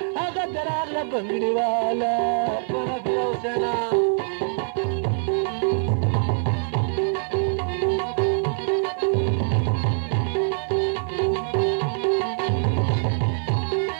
هغه د راغله بنګړي واله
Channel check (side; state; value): left; silent; 56 dB below the other